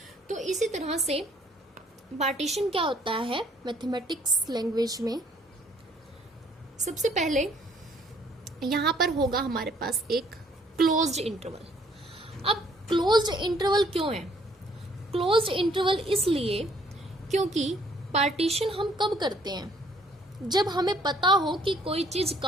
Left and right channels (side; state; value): both; normal; correlation 0.62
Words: तो इसी तरह से पार्टीशन क्या होता है मैथमेटिक्स लैंग्वेज में? सबसे पहले यहां पर होगा हमारे पास एक क्लोज्ड इंटरवल। अब क्लोज्ड इंटरवल क्यों है? क्लोज्ड इंटरवल इसलिए क्योंकि पार्टीशन हम कब करते हैं? जब हमें पता हो कि कोई चीज